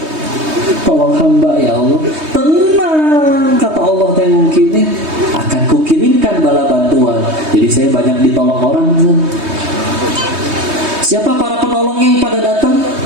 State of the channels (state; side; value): late; left; 3.2 ms